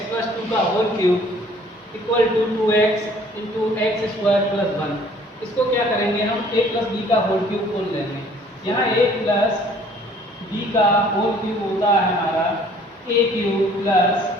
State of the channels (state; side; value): normal; both; correlation 0.56